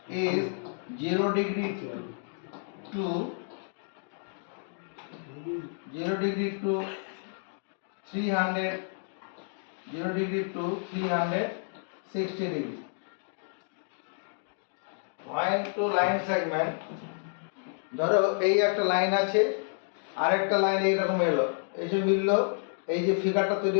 is 0 degree to 300 0 degree to 360 degree. Point to line segment, ধরো এই একটা লাইন আছে আর একটা লাইন এইরকম এলো, এসে মিললো, এই যে ফিগারটা তৈরি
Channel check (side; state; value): right; silent; digital silence